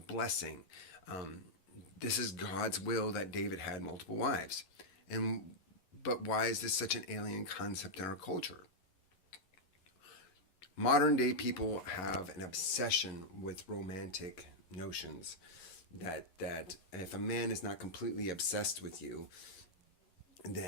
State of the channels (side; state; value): right; late; 11 ms